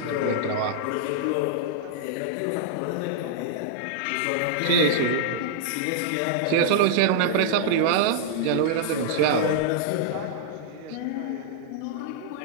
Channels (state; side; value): different; both; correlation -0.01